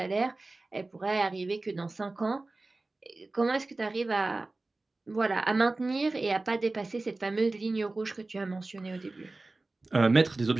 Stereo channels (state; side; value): quieter; left; 3.2 dB